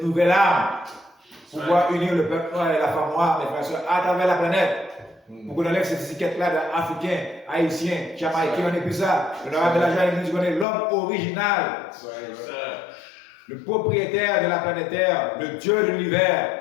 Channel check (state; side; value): drops out; right; at 10.7 s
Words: nouvelle arme pour pouvoir unir le peuple noir et la femme noire, mes frères, à travers la planète. Pour qu'on enlève cette étiquette-là d'Africains, Haïtiens, Jamaïcains, on n'est plus ça. L'honorable Elijah nous dit qu'on est l'homme original, le propriétaire de la planète Terre, le Dieu de